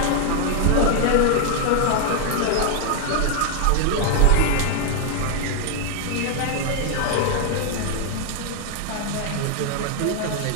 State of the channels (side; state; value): both; different; correlation 0.00